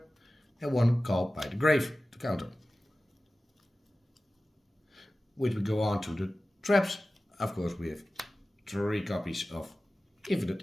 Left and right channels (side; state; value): both; normal; correlation 0.95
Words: and 1 Call by the Grave to counter. Which we go on to the traps. Of course, we have 3 copies of